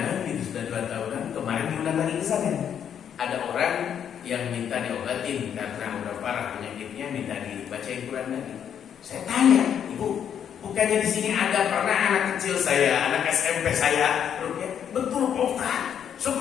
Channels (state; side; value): quieter; right; 8.7 dB